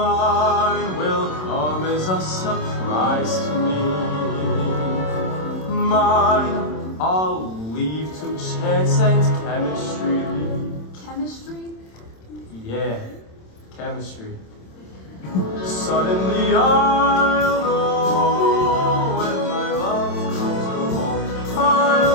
will come as a surprise to me. Mine I'll leave to chance and chemistry. Chemistry? Yeah, chemistry. Suddenly I'll know when my love comes along.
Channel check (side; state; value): right; late; 27 ms